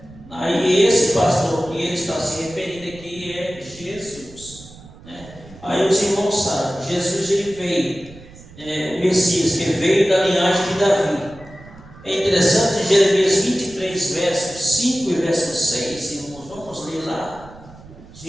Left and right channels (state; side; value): noise; right; rumble, 20 dB below the sound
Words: aí esse pastor que ele está se referindo aqui é Jesus, né? Aí os irmãos sabem, Jesus ele veio, o Messias que veio da linhagem de Davi. É interessante, Jeremias 23, versos 5 e verso 6, irmãos, vamos ler lá,